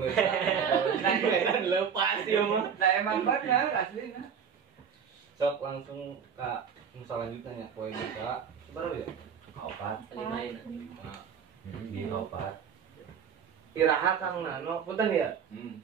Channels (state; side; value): quieter; left; 7.2 dB